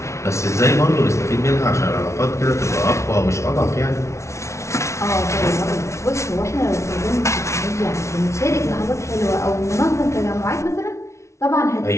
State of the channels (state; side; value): late; right; 0.13 ms